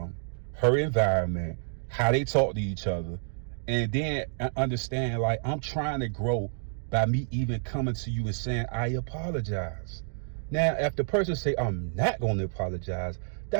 her environment, how they talk to each other, and then understand, like, I'm trying to grow by me even coming to you and saying I apologize. Now, if the person say I'm not going to apologize,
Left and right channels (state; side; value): silent; left; digital silence